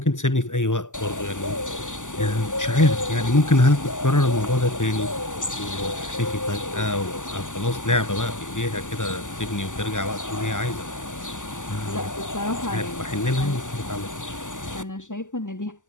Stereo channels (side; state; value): right; late; 0.87 ms